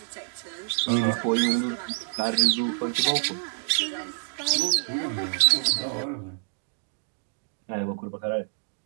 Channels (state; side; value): silent; left; 60 dB below the other